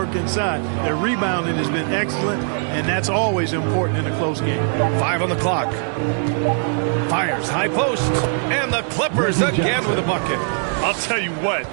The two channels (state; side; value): silent; left; 55 dB below the other